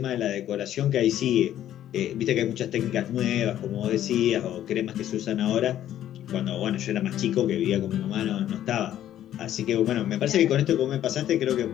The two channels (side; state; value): right; quieter; 11.8 dB